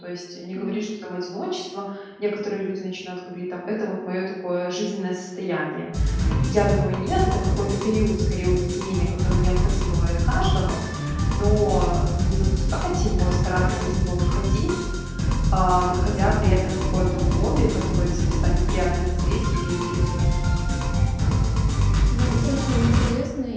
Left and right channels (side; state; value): both; identical; correlation 1.00